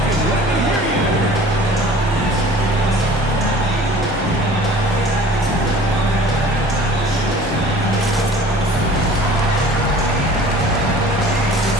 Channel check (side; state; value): both; normal; correlation 0.46